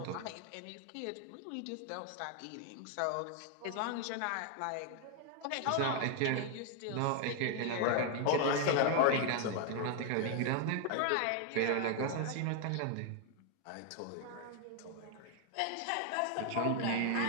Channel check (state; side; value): different; both; correlation 0.00